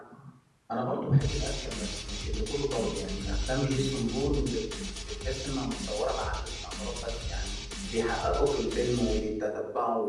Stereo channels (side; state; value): both; identical; correlation 1.00